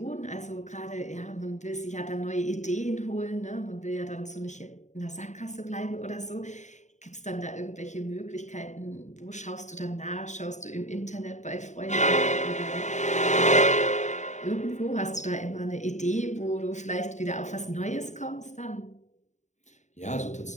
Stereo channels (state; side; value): late; right; 0.34 ms